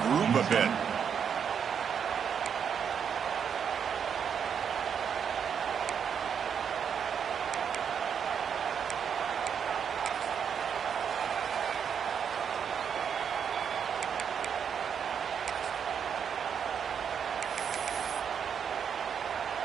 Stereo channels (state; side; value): quieter; left; 7.5 dB